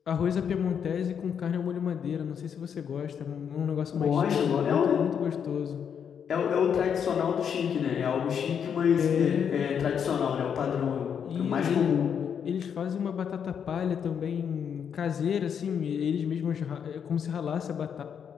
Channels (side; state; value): right; quieter; 7.7 dB